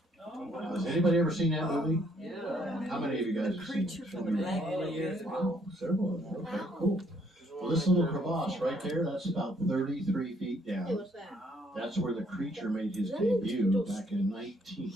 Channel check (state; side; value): normal; both; correlation 0.67